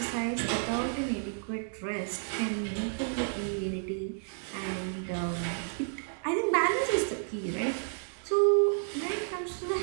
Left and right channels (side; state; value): left; silent; digital silence